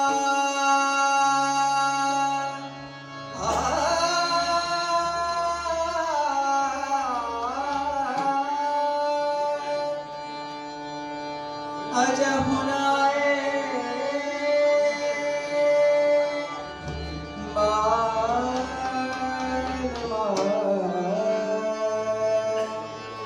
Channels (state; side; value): identical; both; correlation 1.00